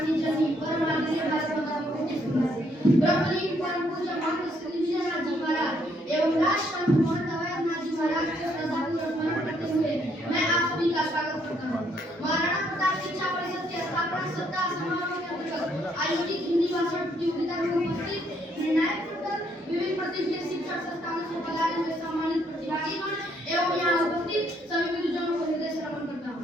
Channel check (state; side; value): normal; both; correlation 0.70